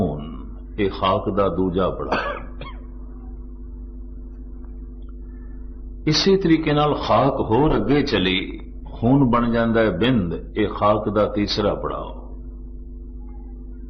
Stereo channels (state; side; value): identical; both; correlation 1.00